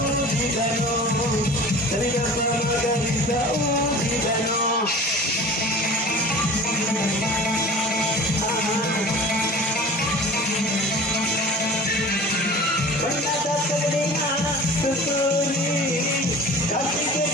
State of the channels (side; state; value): both; normal; correlation 0.41